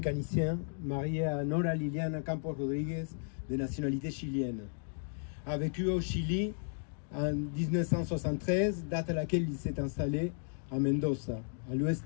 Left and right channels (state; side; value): silent; right; digital silence